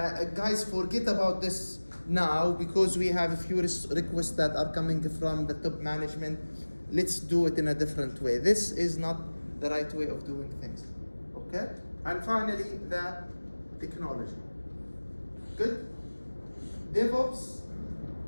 guys, forget about this now because we have a few requests that are coming from the top management. Let's do it in a different way. This is not the right way of doing things. Okay? And finally, the technology. Good? DevOps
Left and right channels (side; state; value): both; inverted; correlation -1.00